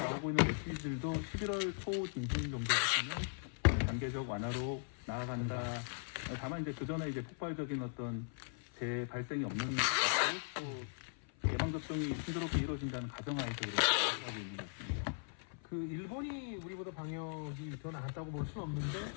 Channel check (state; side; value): silent; right; 52 dB below the other